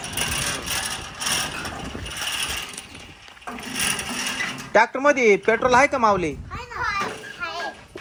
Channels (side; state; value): both; identical; correlation 1.00